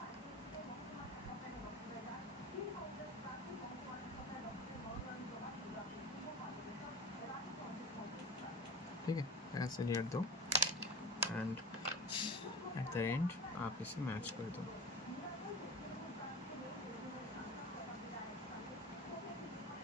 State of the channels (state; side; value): normal; both; correlation 0.32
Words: ठीक है, ऐसे लेयर दो एंड एट द एंड आप इसे मैच कर दो।